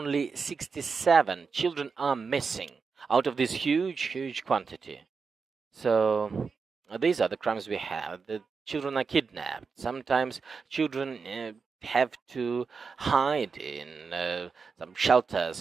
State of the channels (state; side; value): quieter; left; 5.2 dB